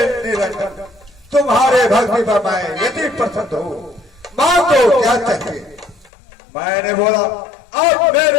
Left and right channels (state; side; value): drops out; right; at 6.1 s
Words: निरंजन तुम्हारे भक्ति पर मैं यदि प्रसन्न हूँ, मांगो क्या चाहिए। मैंने बोला अब